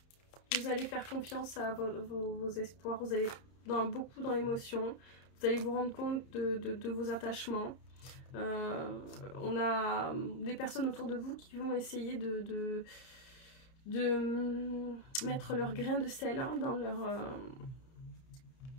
Vous allez faire confiance à vos espoirs. Vous allez beaucoup dans l'émotion. Vous allez vous rendre compte de vos attachements. On a des personnes autour de vous qui vont essayer de mettre leur grain de sel hein, dans leur...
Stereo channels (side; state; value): right; late; 30 ms